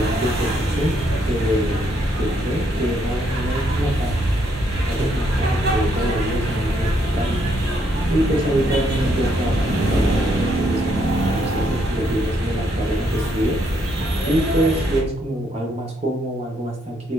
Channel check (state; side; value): normal; both; correlation 0.73